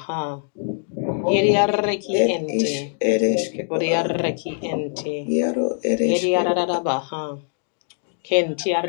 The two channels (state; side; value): silent; right; 59 dB below the other